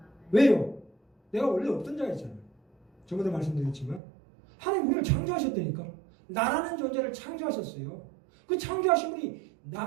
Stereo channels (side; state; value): left; drops out; at 4.0 s